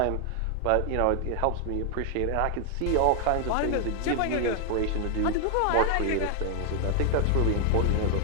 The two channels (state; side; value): different; both; correlation 0.00